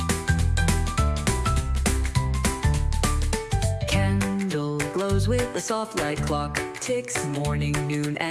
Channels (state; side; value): identical; both; correlation 1.00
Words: Candle glows with a soft light. Clock ticks morning, noon,